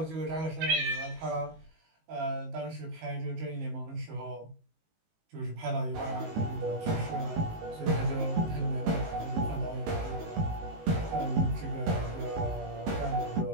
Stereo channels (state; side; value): late; left; 19 ms